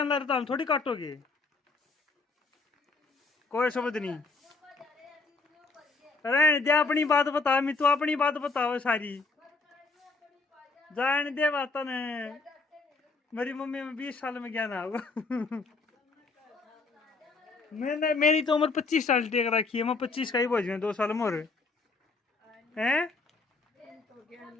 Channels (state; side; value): quieter; right; 3.9 dB